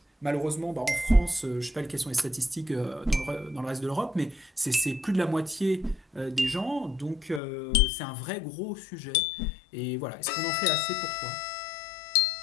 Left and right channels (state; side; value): drops out; right; at 7.4 s